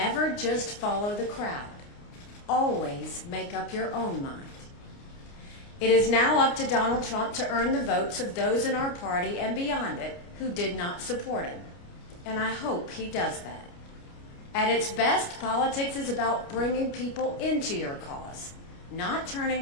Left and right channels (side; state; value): right; late; 29 ms